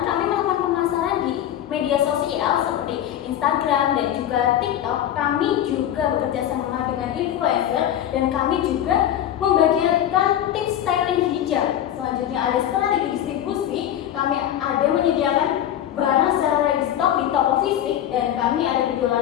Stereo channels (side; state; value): right; quieter; 11.2 dB